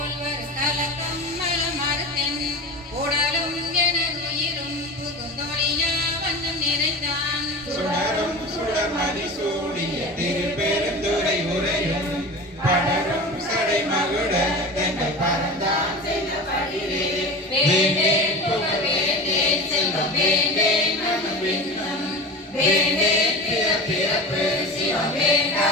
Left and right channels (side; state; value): both; normal; correlation 0.31